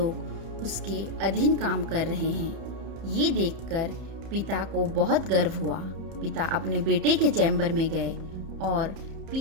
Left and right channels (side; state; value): left; late; 30 ms